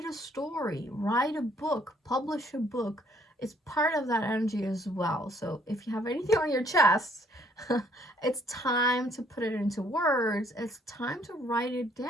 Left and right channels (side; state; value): both; normal; correlation 0.64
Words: a story, write a book, publish a book, it's part of that energy as well. So if you have anything on your chest, it's time to put it into words. It's time to write it